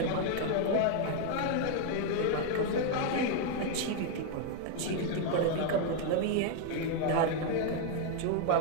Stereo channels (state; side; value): different; both; correlation 0.00